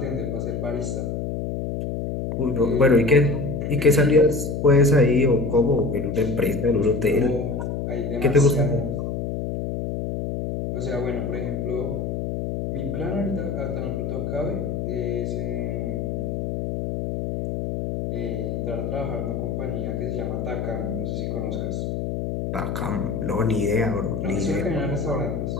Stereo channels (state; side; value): noise; left; hum, 3 dB below the sound